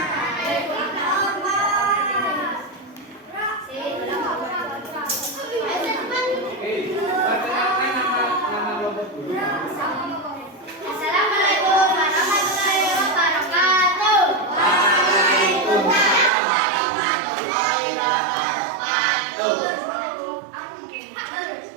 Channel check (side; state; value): left; drops out; at 16.3 s